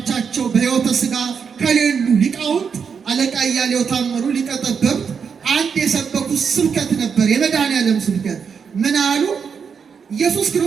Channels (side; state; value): left; quieter; 6.4 dB